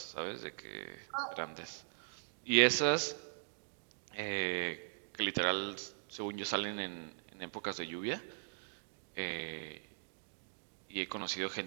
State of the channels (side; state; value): left; silent; digital silence